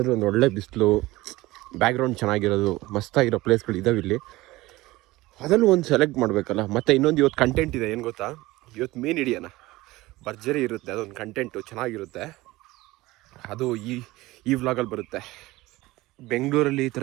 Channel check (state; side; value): quieter; left; 19.2 dB